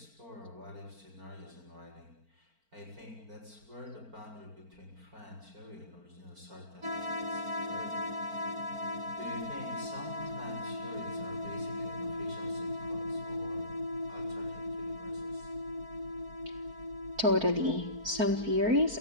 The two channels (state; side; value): late; left; 4.4 ms